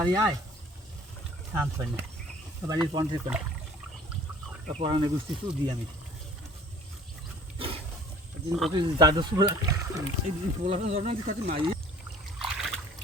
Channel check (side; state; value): both; normal; correlation 0.51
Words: আয় শান্ত হয় না বাড়ির পঞ্চে করে পড়ানো গুছি শুধু দিই আমি দাদু পোলাটা জন্ম কাছে মাই